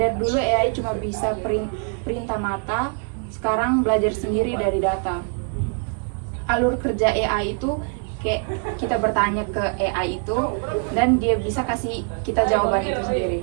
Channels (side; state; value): left; quieter; 39.3 dB